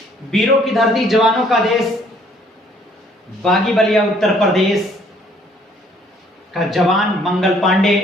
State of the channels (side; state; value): both; normal; correlation 0.62